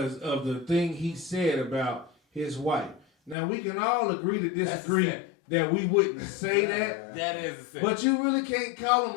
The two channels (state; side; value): drops out; right; at 3.4 s